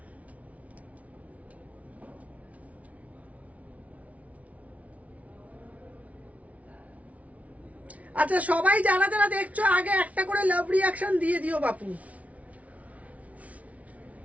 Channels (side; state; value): left; late; 0.068 ms